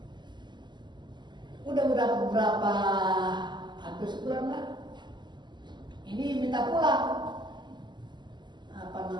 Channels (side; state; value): left; late; 0.21 ms